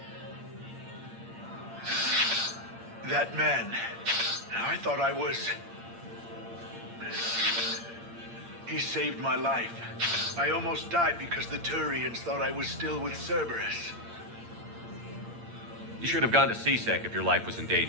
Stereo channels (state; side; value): late; left; 8.7 ms